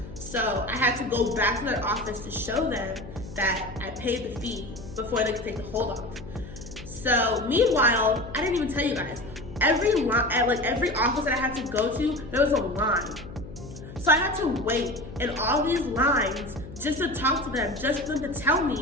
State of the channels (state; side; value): noise; left; hum, 14 dB below the sound